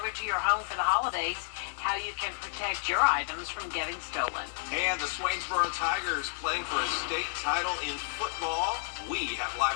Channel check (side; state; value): right; silent; 57 dB below the other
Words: to your home for the holidays, how you can protect your items from getting stolen. And the Swainsboro Tigers playing for a state title in football. We have live